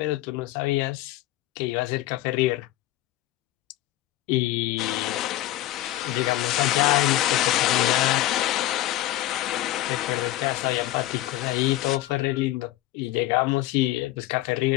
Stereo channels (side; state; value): right; quieter; 15.8 dB